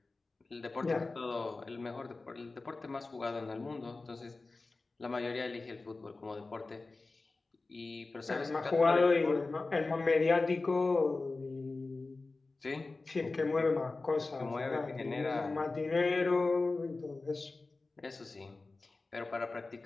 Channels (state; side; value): quieter; right; 3.5 dB